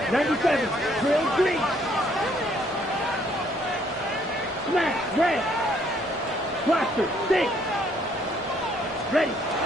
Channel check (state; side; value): normal; both; correlation 0.66